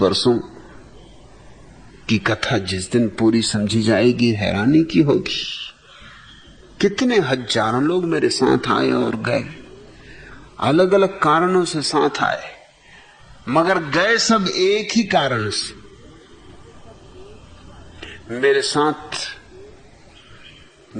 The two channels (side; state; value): both; identical; correlation 1.00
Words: वर्षों की कथा जिस दिन पूरी समझी जाएगी हैरानी की होगी। कितने हजारों लोग मेरे साथ आए और गए, अलग अलग कारणों से साथ आए, मगर गए सब एक ही कारण से। मेरे साथ